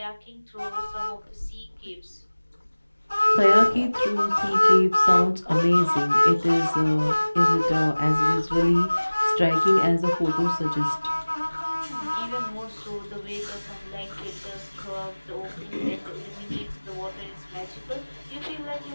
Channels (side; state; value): both; inverted; correlation -1.00